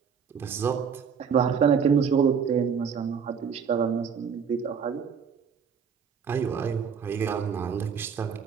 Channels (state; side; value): quieter; left; 6.7 dB